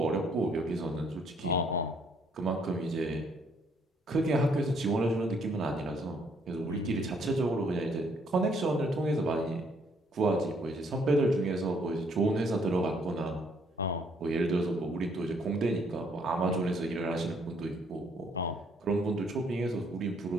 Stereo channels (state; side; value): normal; both; correlation 0.67